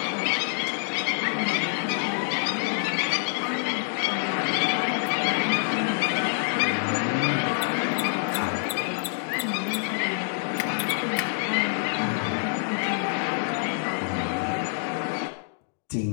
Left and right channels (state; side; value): silent; right; digital silence